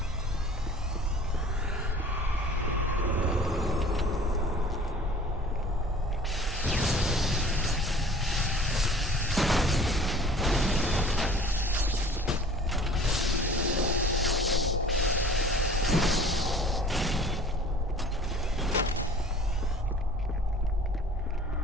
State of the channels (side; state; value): both; normal; correlation 0.47